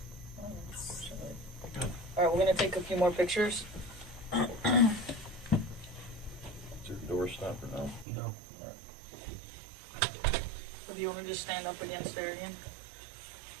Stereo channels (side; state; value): left; drops out; at 8.1 s